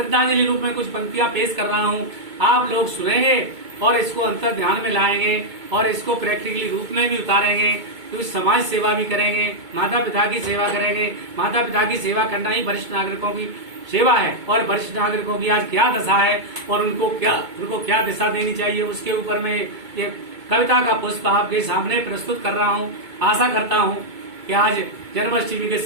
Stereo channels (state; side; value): late; left; 2.2 ms